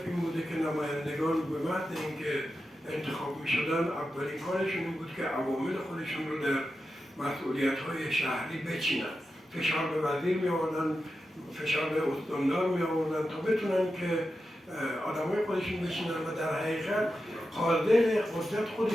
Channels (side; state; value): both; normal; correlation 0.90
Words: این بوده که نمایندگان به محض اینکه انتخاب می شدن اولین کارشون این بود که عوامل خودشون رو در مسئولیت‌های شهری بچینن، فشار به وزیر می آوردن، فشار به استاندار می آوردن تا بتونن که آدمای خودشون بشینن و در حقیقت قادر قدرت